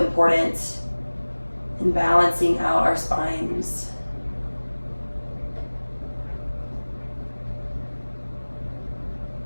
in balancing out our spines.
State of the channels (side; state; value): both; inverted; correlation -1.00